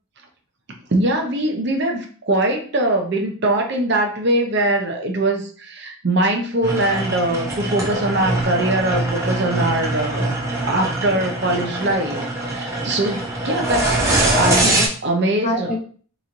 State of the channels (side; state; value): both; normal; correlation 0.15